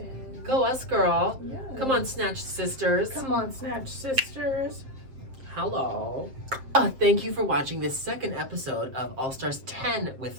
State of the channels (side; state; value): left; late; 7.5 ms